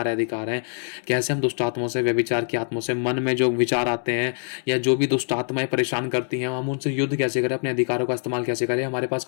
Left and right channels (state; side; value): silent; right; digital silence